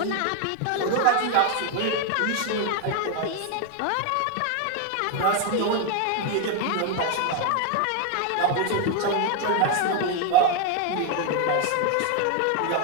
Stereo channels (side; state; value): both; different; correlation 0.01